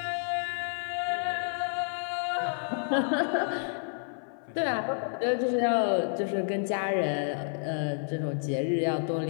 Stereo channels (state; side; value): silent; right; 56 dB below the other